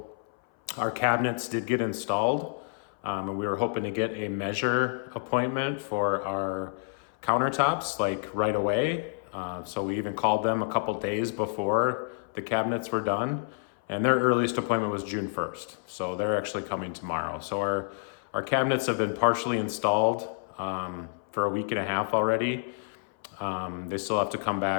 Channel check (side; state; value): right; silent; 57 dB below the other